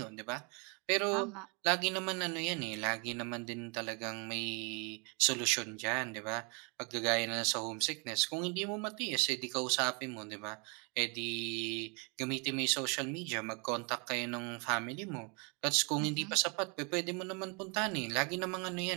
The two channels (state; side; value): quieter; left; 34.1 dB